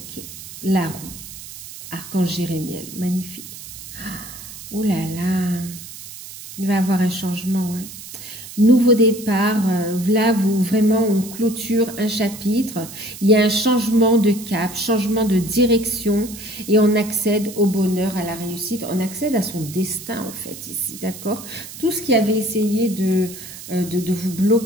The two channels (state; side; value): noise; right; hiss, 13 dB below the sound